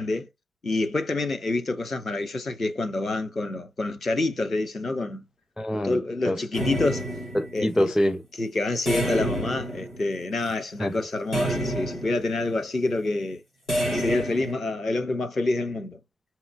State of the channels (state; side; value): normal; both; correlation 0.88